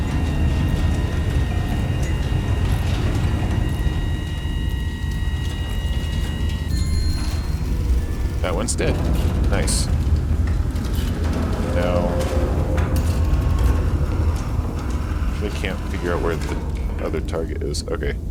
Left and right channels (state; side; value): identical; both; correlation 1.00